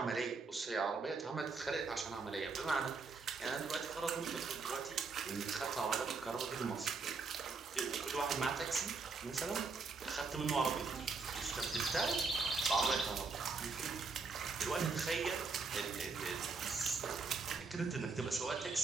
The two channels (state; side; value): quieter; left; 4.5 dB